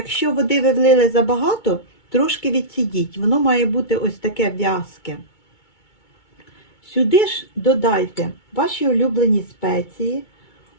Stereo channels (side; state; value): right; late; 2.2 ms